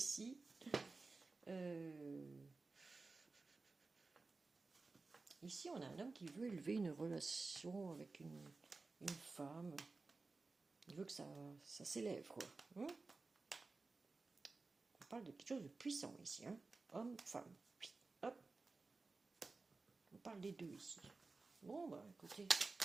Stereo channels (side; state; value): left; quieter; 3.8 dB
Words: Ici, on a un homme qui veut élever une relation avec une femme. Il veut que ça s'élève, quoi. On parle de quelque chose de puissant ici, hein. Homme, femme. Hop. On parle des deux ici. Bon, bah écoutez.